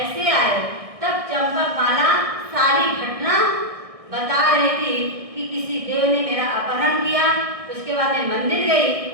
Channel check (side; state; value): left; late; 1.6 ms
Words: आए। तब चंपक माला सारी घटना बता रही थी कि किसी देव ने मेरा अपहरण किया, उसके बाद मैं मंदिर